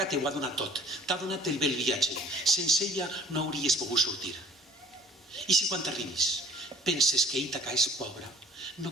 t'ho ha donat tot, t'ha donat el bel viatge. Sense ella no hauries pogut sortir. I si quan t'arribis penses que Ítaca és pobra, no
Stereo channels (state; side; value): normal; both; correlation 0.52